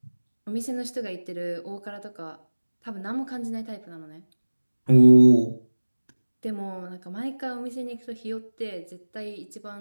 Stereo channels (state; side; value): inverted; both; correlation -1.00